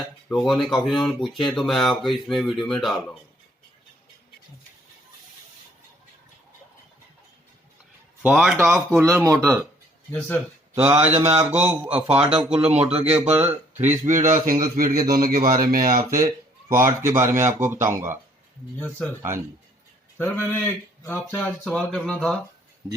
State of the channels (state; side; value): normal; both; correlation 0.63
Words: लोगों ने काफी लोगों ने पूछे हैं, तो मैं आपको इसमें वीडियो में डाल रहा हूँ। Fault of cooler motor. Yes sir. तो आज मैं आपको फॉल्ट ऑफ कूलर मोटर के ऊपर 3 स्पीड और सिंगल स्पीड के दोनों के बारे में आपसे फॉल्ट के बारे में आपको बताऊंगा। Yes sir. हाँ जी सर मैंने आपसे आज सवाल करना था